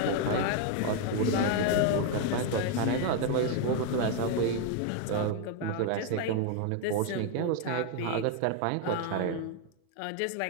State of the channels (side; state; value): both; different; correlation 0.01